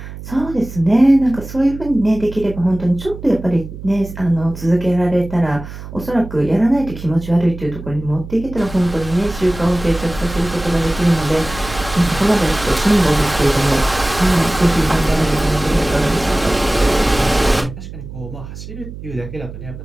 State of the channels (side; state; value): right; noise; hum, 12 dB below the sound